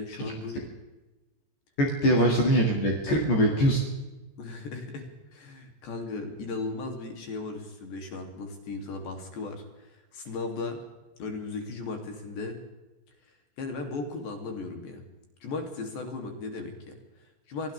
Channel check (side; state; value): right; late; 14 ms